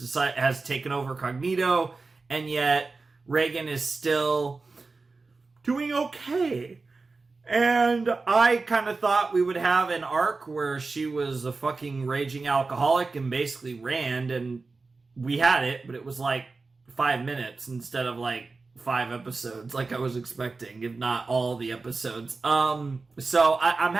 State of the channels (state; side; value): quieter; left; 3.9 dB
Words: taken over Cognito, and yet Reagan is still doing okay. And I kind of thought we would have an arc where she was a fucking raging alcoholic and basically Rand, and we had it, but it was like 5 minutes instead of like 5 episodes like I was expecting, if not all the episodes. So I'm